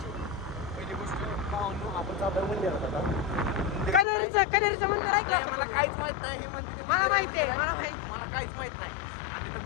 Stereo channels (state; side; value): drops out; right; at 4.0 s